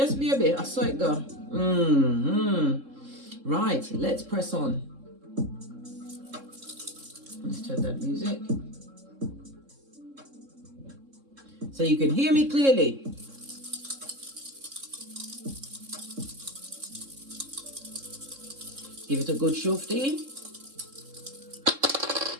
baby, I saw it go. Right, let's press on. Let's turn that music so you can hear me clearly. Give it a good shufty.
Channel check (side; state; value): left; late; 3.7 ms